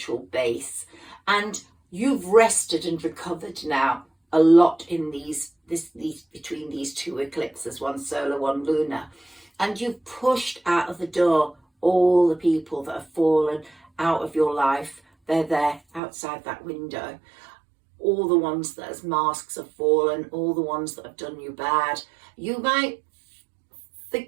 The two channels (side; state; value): left; drops out; at 16.0 s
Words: base, and you've rested and recovered now a lot in these between these two eclipses, one solar, one lunar, and you've pushed out of the door all the people that have fallen out of your life. They're there outside that window. All the ones that as masks have fallen, all the ones that have done you bad. You might